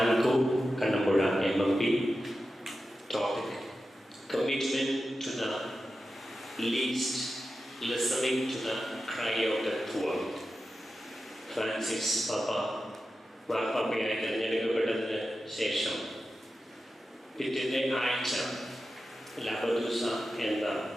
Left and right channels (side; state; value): both; normal; correlation 0.92